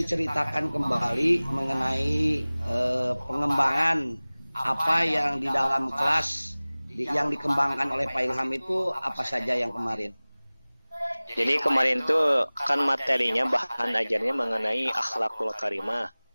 kembali mengenai pengembangan apa yang di dalam kelas yang dikembangkan oleh Pak Ilham itu apa saja yang kemarin? Jadi kemarin tuh kan materinya bahan ajarnya mengenai akhlakul karimah,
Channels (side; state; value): both; inverted; correlation -0.99